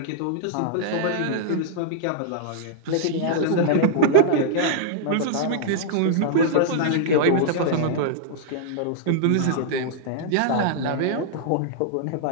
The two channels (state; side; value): different; both; correlation -0.02